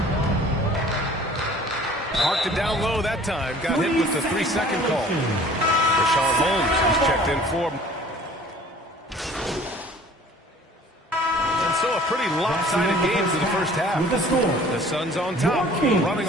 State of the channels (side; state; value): both; normal; correlation 0.50